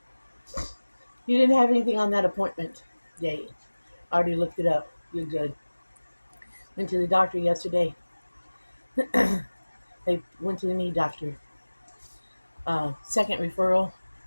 You didn't have anything on that appointment date. I already looked it up. You're good. Went to the doctor yesterday. They went to the knee doctor. Second referral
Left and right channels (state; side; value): inverted; both; correlation -1.00